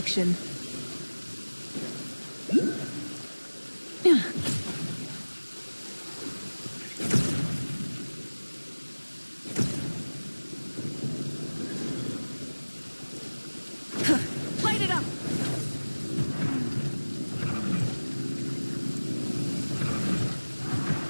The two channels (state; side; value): inverted; both; correlation -1.00